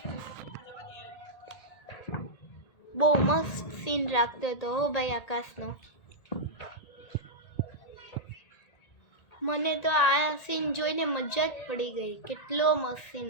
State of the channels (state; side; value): late; right; 1.8 ms